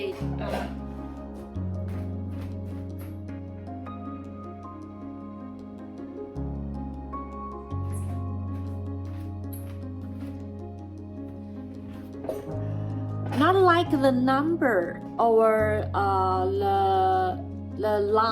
not like the number or the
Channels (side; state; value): both; identical; correlation 1.00